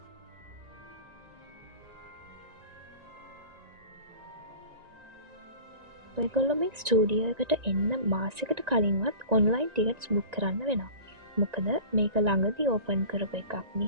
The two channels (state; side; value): late; left; 1.9 ms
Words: ඔයගොල්ලෝ මේ ස්ටූඩියෝ එකට එන්න මාසෙකට කලින්වත් ඔන්ලයින් ටිකට්ස් බුක් කරන්න වෙනවා. මොකද මේක ළඟදී ඕපන් කරපු එකක්